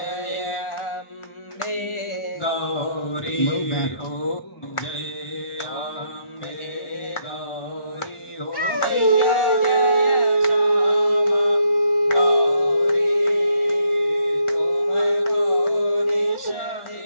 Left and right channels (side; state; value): right; late; 1.4 ms